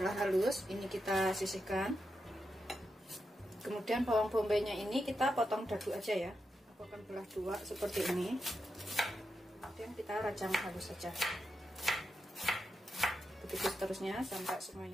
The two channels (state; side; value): normal; both; correlation 0.87